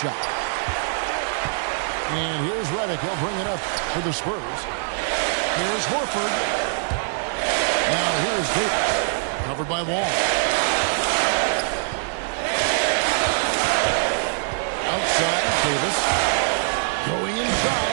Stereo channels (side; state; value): left; silent; digital silence